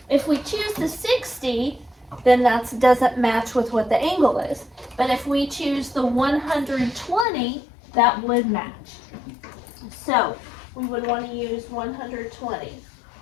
if we choose the 60, then that doesn't match with what the angle is. But if we choose the 120, that would match. So we would want to use 120.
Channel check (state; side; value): drops out; right; at 7.2 s